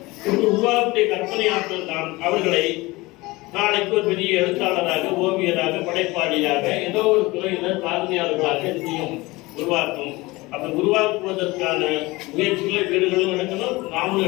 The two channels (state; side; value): quieter; right; 21.7 dB